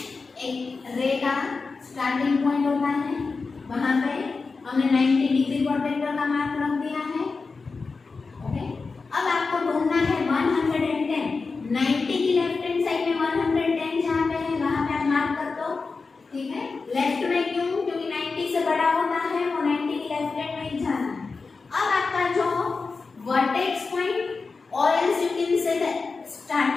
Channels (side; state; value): right; quieter; 4.3 dB